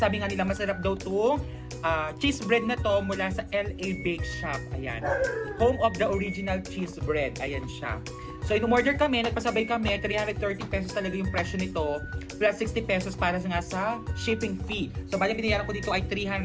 nga nila masarap daw itong cheese bread na to mula sa LA Bake Shop. Ayan. Home of the original cheese bread. Ayan siya. So, in-order kami, nagpasabay kami, 330 pesos talaga yung presyo nito, plus 60 pesos para nga sa shipping fee. So, bali binayaran ko dito ay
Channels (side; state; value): both; identical; correlation 1.00